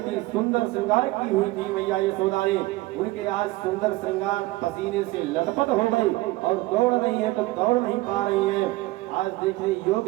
थी, सुंदर श्रृंगार की हुई थी मैया यशोदा ने। उनके आज सुंदर श्रृंगार पसीने से लटपट हो गई और दौड़ रही है तो दौड़ नहीं पा रही है। आज देखने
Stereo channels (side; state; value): left; quieter; 19.7 dB